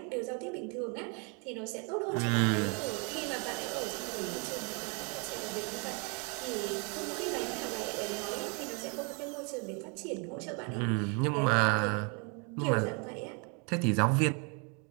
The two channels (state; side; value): quieter; left; 35.0 dB